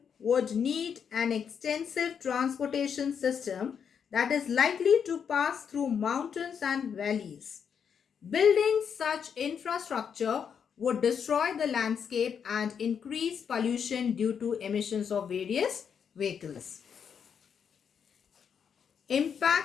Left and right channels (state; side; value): quieter; right; 7.3 dB